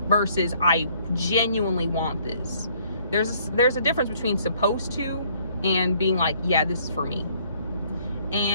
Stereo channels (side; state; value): both; inverted; correlation -0.62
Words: versus I genuinely want this. There's a difference between supposed to and being like, yeah, this is for me.